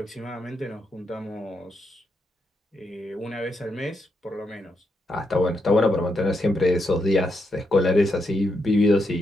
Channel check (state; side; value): normal; both; correlation 0.82